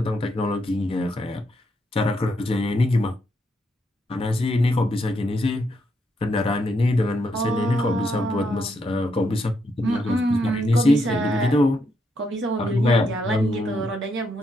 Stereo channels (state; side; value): normal; both; correlation 0.78